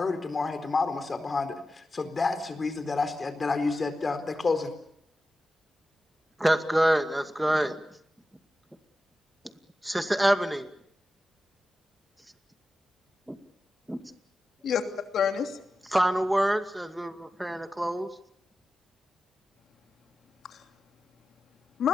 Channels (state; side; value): normal; both; correlation 0.93